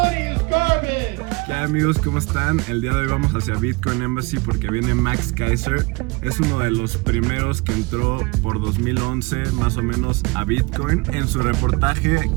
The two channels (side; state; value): left; quieter; 26.1 dB